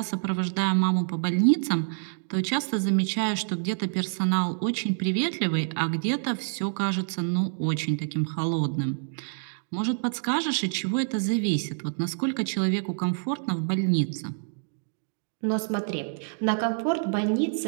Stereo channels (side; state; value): left; silent; digital silence